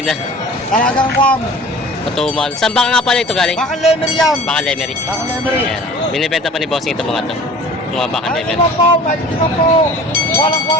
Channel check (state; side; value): normal; both; correlation 0.44